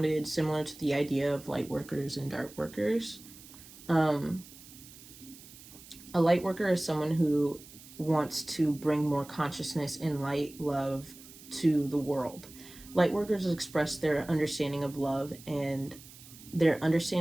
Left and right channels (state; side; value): noise; right; hiss, 19 dB below the sound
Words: similar to the idea of light workers and dark workers. Um, a light worker is someone who wants to bring more consciousness and light love to the world. Light workers express their understanding of love and their